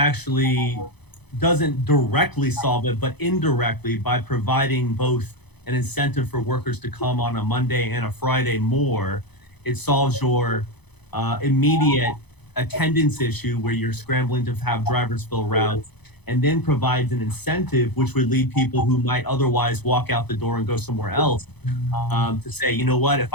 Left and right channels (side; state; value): right; late; 0.99 ms